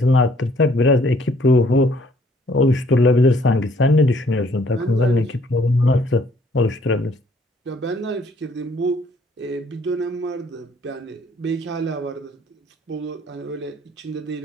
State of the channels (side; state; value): both; normal; correlation 0.62